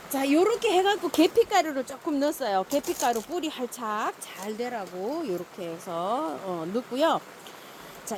자, 요렇게 해갖고 계피가루를 조금 넣었어요. 계피가루 뿌리 활착 잘 되라고 요렇게 해서 넣고요. 자,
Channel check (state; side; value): identical; both; correlation 1.00